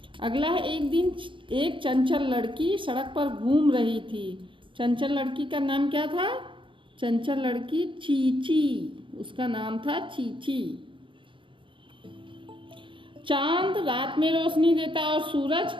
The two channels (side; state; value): left; late; 0.24 ms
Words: अगला है, एक दिन एक चंचल लड़की सड़क पर घूम रही थी। चंचल लड़की का नाम क्या था? चंचल लड़की चीची, उसका नाम था चीची। चांद रात में रोशनी देता और सूरज,